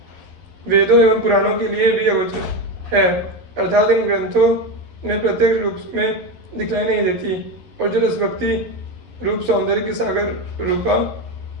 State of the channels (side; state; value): left; late; 12 ms